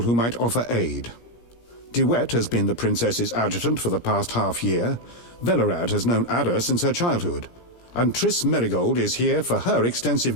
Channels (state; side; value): late; right; 17 ms